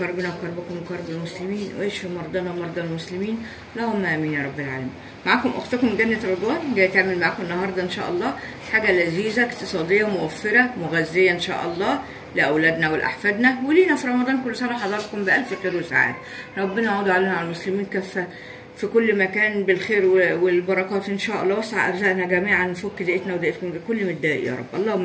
وكربكم وكرب المسلمين ويشفي مرضانا ومرضى المسلمين، اللهم امين يا رب العالمين. معاكم اختكم جنة رضوان، جايه تعمل معاكم النهارده ان شاء الله حاجة لذيذة اقتصادية موفرة مغذية ان شاء الله لاولادنا ولاحفادنا ولينا في رمضان. كل سنة حضراتكم بالف خير وسعادة. ربنا يعود علينا على المسلمين كافة في كل مكان بالخير والبركات ان شاء الله. وسع ارزاقنا جميعا، نفك ضيقتنا وضيقتكم بكل متضايق يا رب،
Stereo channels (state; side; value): identical; both; correlation 1.00